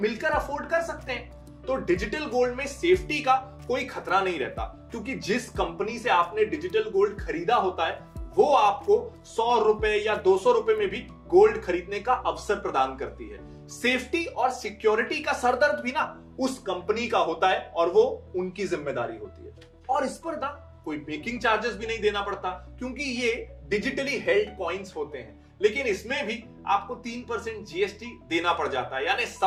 अफोर्ड कर सकते हैं। तो डिजिटल गोल्ड में सेफ्टी का कोई खतरा नहीं रहता, क्योंकि जिस कंपनी से आपने डिजिटल गोल्ड खरीदा होता है वो आपको 100 रुपए या 200 रुपए में भी गोल्ड खरीदने का अवसर प्रदान करती है। सेफ्टी और सिक्योरिटी का सरदर्द भी ना उस कंपनी का होता है और वो उनकी जिम्मेदारी होती है। और इस पर ना कोई मेकिंग चार्जेस भी नहीं देना पड़ता, क्योंकि ये डिजिटली हेल्ड कॉइन्स होते हैं। लेकिन इसमें भी आपको 3% जीएसटी देना पड़ जाता है, यानी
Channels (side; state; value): both; identical; correlation 1.00